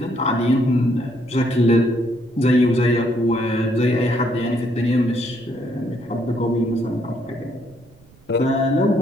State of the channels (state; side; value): noise; right; rumble, 27 dB below the sound